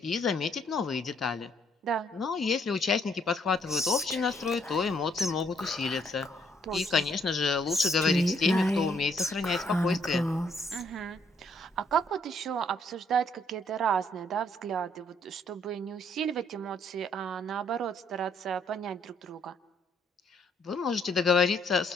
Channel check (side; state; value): both; normal; correlation 0.68